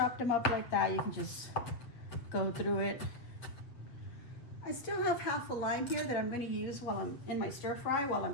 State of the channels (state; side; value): late; right; 7.6 ms